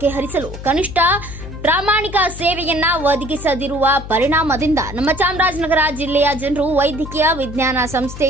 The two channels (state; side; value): noise; left; hum, 11 dB below the sound